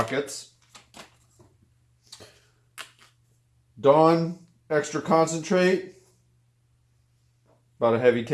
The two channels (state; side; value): identical; both; correlation 1.00